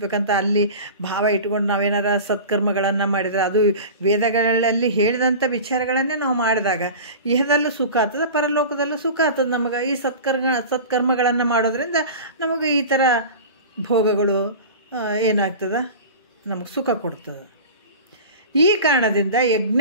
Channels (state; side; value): inverted; both; correlation -0.34